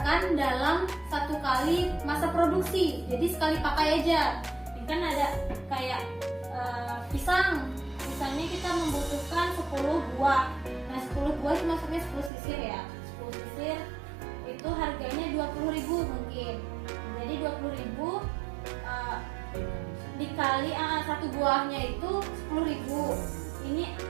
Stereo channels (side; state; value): left; drops out; at 12.3 s